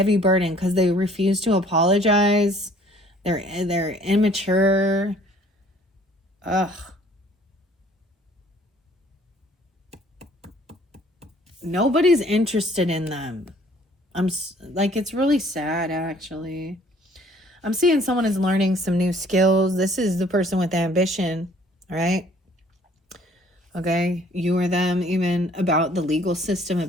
burden because they refuse to apologize. They're immature. Ugh. Nobody's interested in them. It's really sad, actually. I'm seeing someone is learning some new skills. This is the person with ambition, all right? Okay, you or them, even about the legal system,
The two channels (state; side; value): normal; both; correlation 0.57